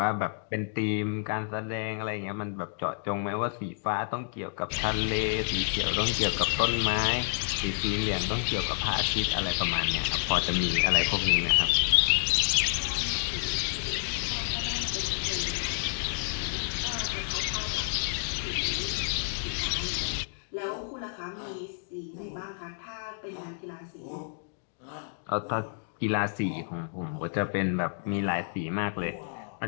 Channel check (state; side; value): silent; right; digital silence